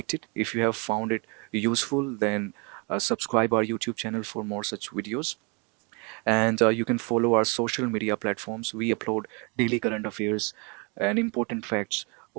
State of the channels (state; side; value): quieter; left; 32.5 dB